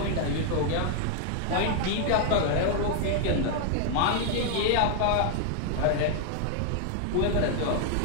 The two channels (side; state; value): both; different; correlation 0.00